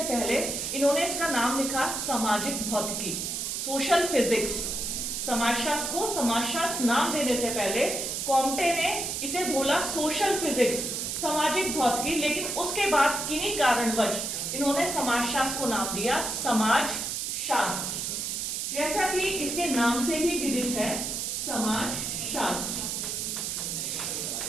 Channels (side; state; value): right; noise; hiss, 2 dB below the sound